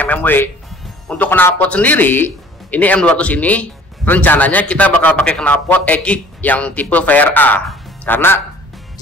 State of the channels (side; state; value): both; normal; correlation 0.51